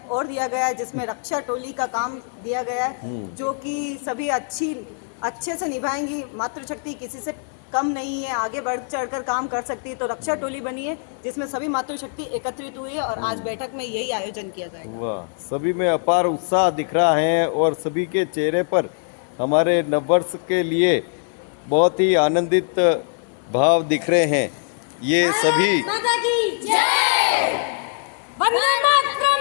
और दिया गया है जिसमें रक्षा टोली का काम दिया गया है, जो कि सभी अच्छे से निभाएंगी। मातृशक्ति किसी से कम नहीं है, आगे बढ़ चढ़कर काम कर सकती है। तो रक्षा टोली बनी है जिसमें सभी मातृशक्ति एकत्रित हुई है और आज बैठक में यही आयोजन किया जाएगा। वाह, सभी में अपार उत्साह दिख रहा है और सभी के चेहरे पर हमारे नववर्ष के लिए बहुत ही आनंदित भाव दिख रहे हैं। ये सभी माता की जय, वंदे मातरम,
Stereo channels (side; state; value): right; silent; 60 dB below the other